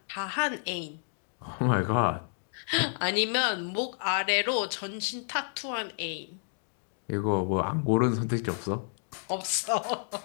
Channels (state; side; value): silent; right; 58 dB below the other